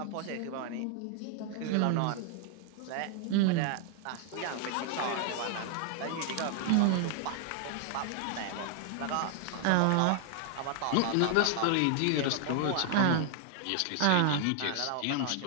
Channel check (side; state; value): both; different; correlation 0.00